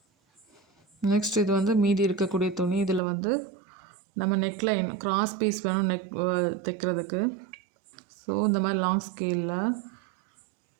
நெக்ஸ்ட் இது வந்து மீதி இருக்கக்கூடிய துணி. இதில் வந்து நம்ம நெக்லைன் கிராஸ் பீஸ் வேணும் தைக்கிறதுக்கு. ஸோ இந்த மாதிரி லாங் ஸ்கேலில்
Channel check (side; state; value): left; drops out; at 3.0 s